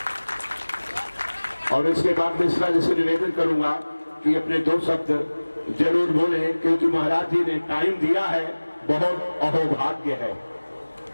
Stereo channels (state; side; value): inverted; both; correlation -1.00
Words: और इसके बाद मिश्रा जी से निवेदन करूंगा कि अपने 2 शब्द जरूर बोले, क्योंकि महाराज जी ने टाइम दिया है, बहुत अहोभाग्य है।